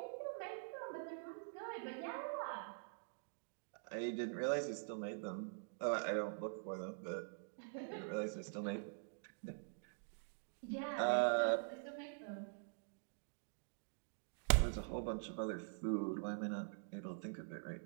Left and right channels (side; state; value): left; silent; digital silence